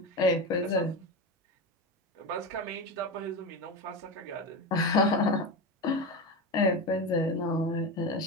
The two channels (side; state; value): both; normal; correlation 0.20